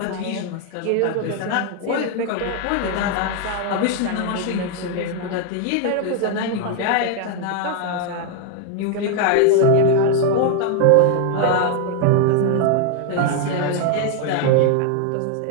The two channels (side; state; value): both; different; correlation 0.00